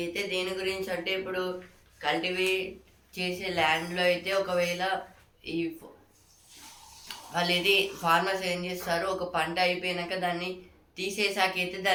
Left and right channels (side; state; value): both; identical; correlation 1.00